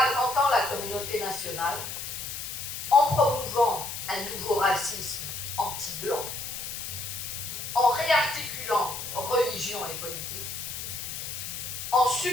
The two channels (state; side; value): noise; left; hiss, 6 dB below the sound